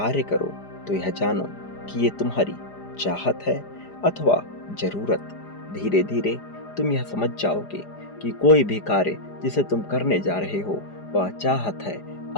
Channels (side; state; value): right; late; 4.9 ms